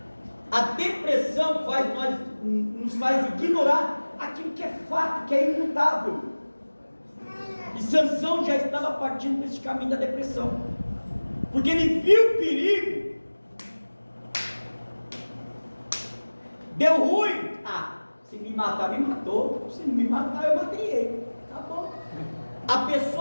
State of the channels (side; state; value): both; inverted; correlation -1.00